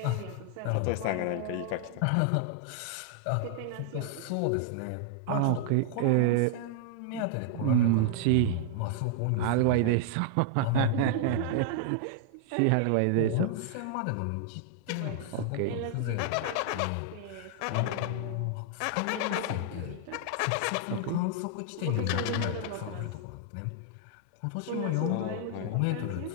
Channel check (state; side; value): different; both; correlation 0.00